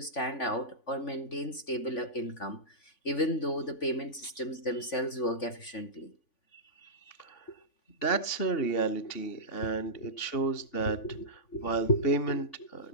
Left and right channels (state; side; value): late; right; 3.5 ms